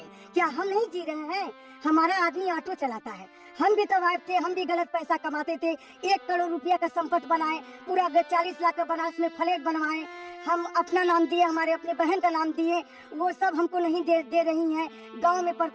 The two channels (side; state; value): both; identical; correlation 1.00